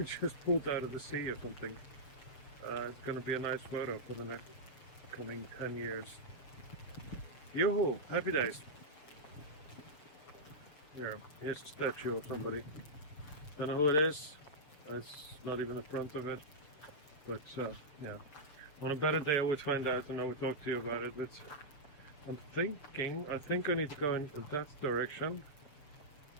just pulled out of the sea or something. It's gonna be a nice photo for the next coming 10 years. Yoo-hoo! Happy days. Here's a statue of somebody. Don't know who it is. It's not even the front of it. But yeah. On a better day I would find out and I would talk to you about it, but I think I need to go in that direction.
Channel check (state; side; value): late; right; 6.7 ms